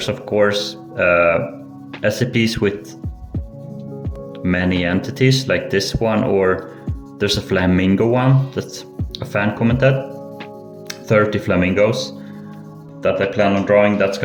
of course. SCPs with many entities, like this one, or there's a flamingo one that a fan commented. 30 flamingos that I plan on drawing. That's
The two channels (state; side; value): identical; both; correlation 1.00